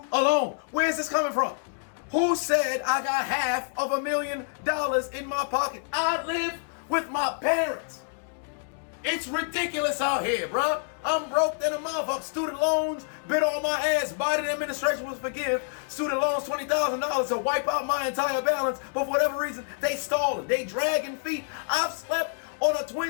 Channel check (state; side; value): silent; right; digital silence